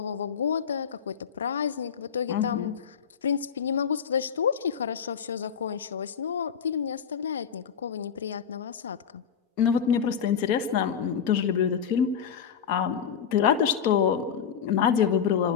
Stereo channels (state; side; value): quieter; right; 7.5 dB